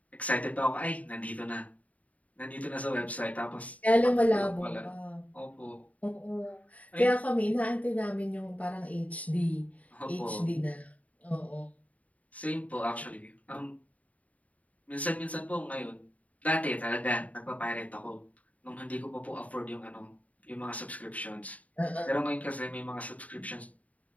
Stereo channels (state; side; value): late; right; 0.070 ms